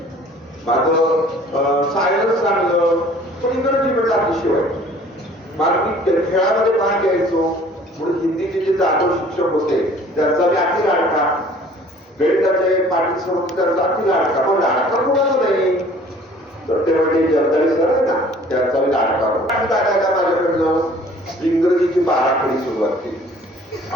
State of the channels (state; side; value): normal; both; correlation 0.52